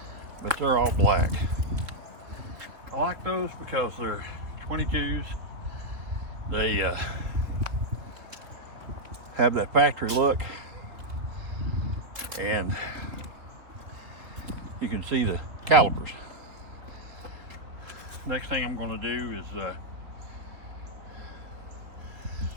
but they're all black. I like those because they're 22s. They have that factory look, and you can see the calipers. Next thing I'm going to do is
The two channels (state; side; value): late; left; 3.4 ms